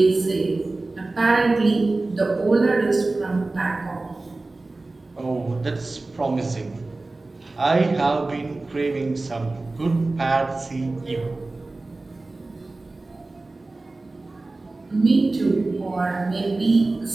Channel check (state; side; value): quieter; left; 3.2 dB